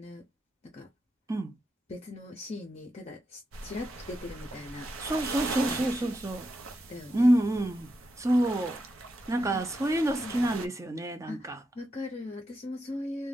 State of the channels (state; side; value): normal; both; correlation 0.85